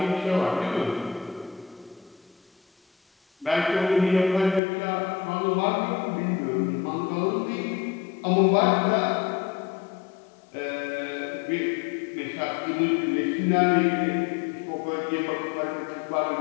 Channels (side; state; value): right; drops out; at 4.6 s